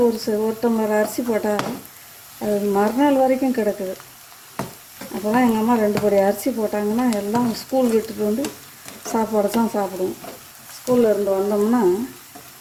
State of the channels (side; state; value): both; identical; correlation 1.00